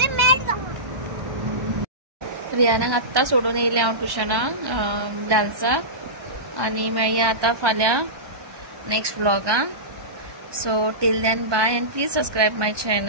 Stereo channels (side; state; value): left; late; 1.2 ms